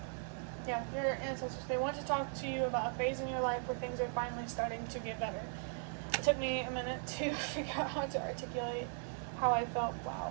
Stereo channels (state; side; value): silent; left; 52 dB below the other